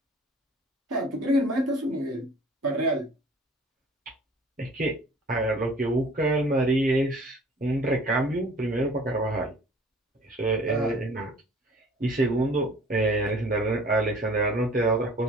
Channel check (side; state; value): both; normal; correlation 0.50